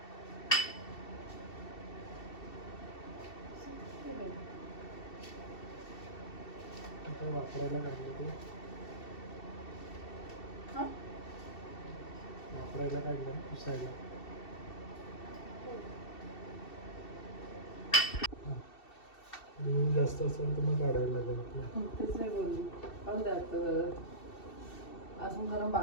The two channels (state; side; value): late; right; 2.7 ms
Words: वापरायला काढलं ते वापरायला काढलं पुसायला. जास्त असेल तर मग काढायला लागेल. तेच नाही बोलली. पाहू द्या अजून कारण